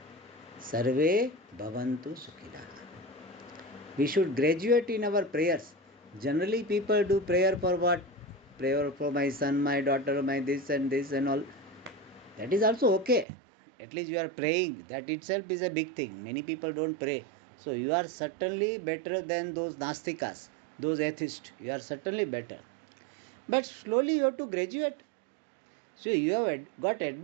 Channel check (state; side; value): drops out; left; at 13.2 s